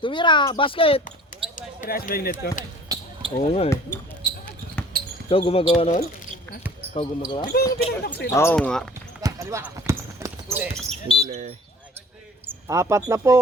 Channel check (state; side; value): normal; both; correlation 0.49